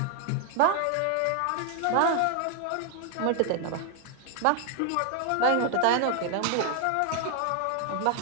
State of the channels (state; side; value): different; both; correlation 0.00